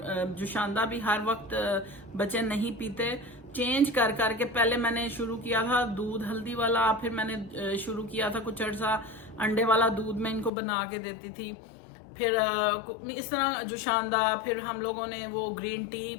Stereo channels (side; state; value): right; drops out; at 10.5 s